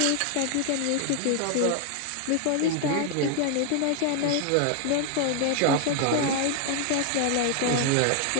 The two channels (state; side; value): different; both; correlation 0.00